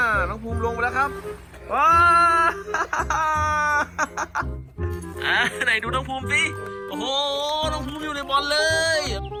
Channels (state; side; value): identical; both; correlation 1.00